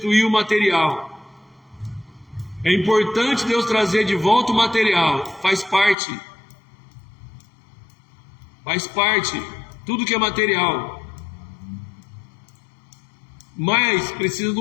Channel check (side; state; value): right; drops out; at 6.0 s